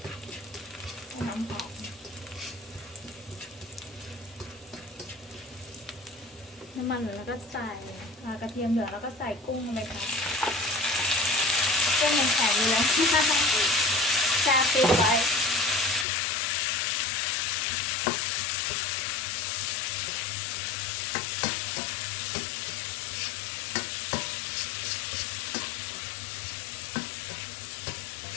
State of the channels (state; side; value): drops out; right; at 16.1 s